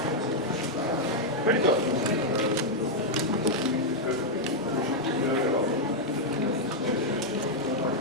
Where'd it go?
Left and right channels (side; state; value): both; normal; correlation -0.03